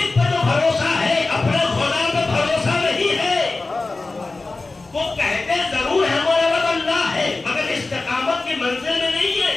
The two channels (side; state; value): right; quieter; 3.5 dB